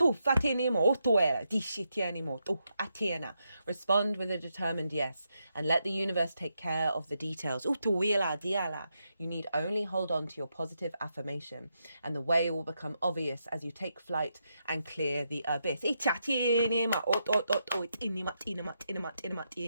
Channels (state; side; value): inverted; both; correlation -0.83